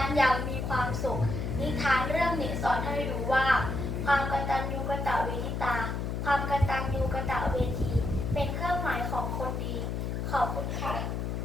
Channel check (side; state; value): left; noise; hum, 2 dB below the sound